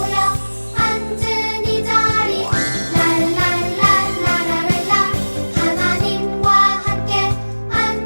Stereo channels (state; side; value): inverted; both; correlation -1.00